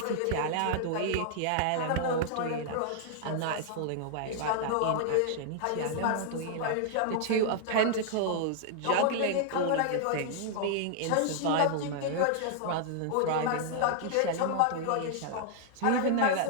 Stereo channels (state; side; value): different; both; correlation -0.01